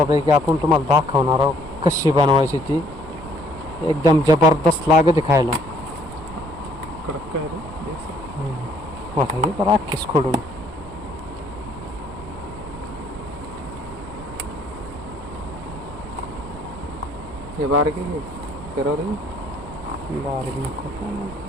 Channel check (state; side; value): noise; right; rumble, 14 dB below the sound